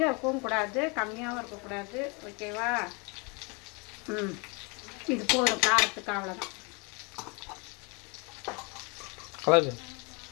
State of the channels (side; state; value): right; quieter; 31.2 dB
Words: இருக்கவும் கூடாது, கம்மியாகவும் இருக்கக்கூடாது. ஓகேவா? இது போதும் காரத்துக்கு, அவ்வளோதான்.